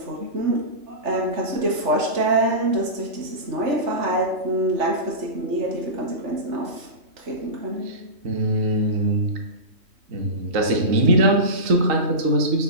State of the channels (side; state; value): left; late; 3.4 ms